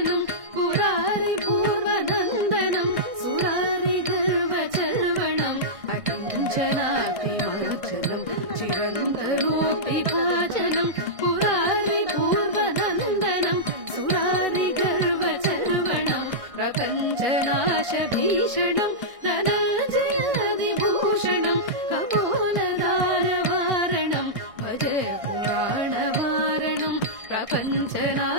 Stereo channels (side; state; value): left; late; 1.6 ms